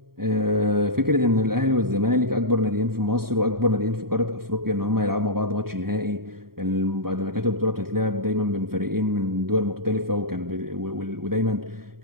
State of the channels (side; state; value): left; late; 0.93 ms